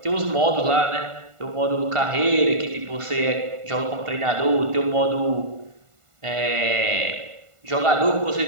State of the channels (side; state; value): left; late; 1.5 ms